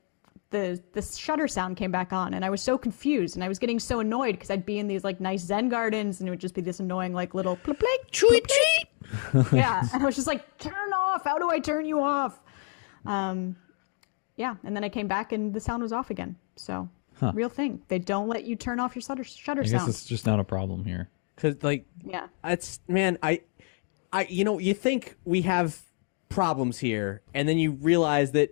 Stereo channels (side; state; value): right; quieter; 39.1 dB